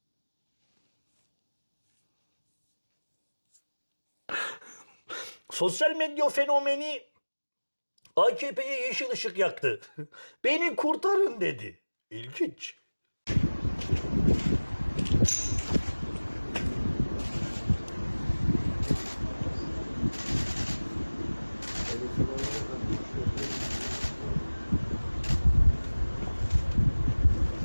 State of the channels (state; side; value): inverted; both; correlation -1.00